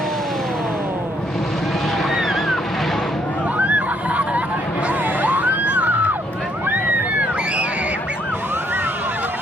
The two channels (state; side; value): normal; both; correlation 0.70